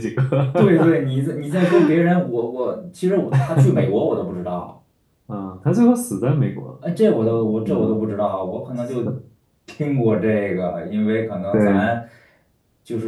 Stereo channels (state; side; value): identical; both; correlation 1.00